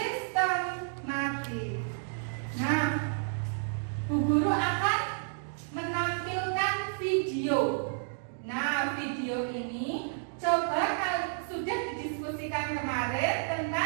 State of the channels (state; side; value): silent; left; digital silence